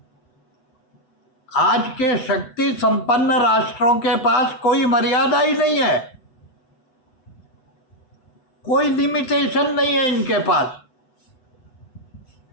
आज के शक्ति संपन्न राष्ट्रों के पास कोई मर्यादा ही नहीं है, कोई लिमिटेशन नहीं है इनके पास।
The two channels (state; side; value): late; right; 8.1 ms